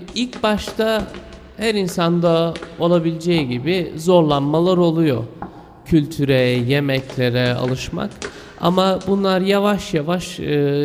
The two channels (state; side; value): identical; both; correlation 1.00